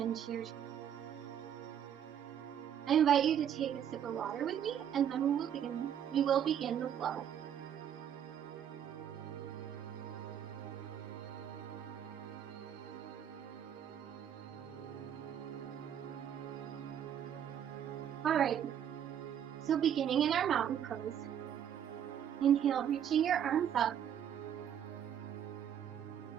to your chest. I invite you to take a sip of water with me, and then we will begin the flow. Alright, so beginning in our mountain pose, inhale, reaching your arms up.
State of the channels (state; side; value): quieter; left; 9.3 dB